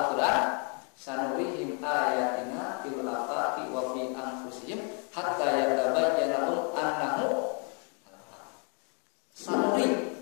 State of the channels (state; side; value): quieter; right; 38.4 dB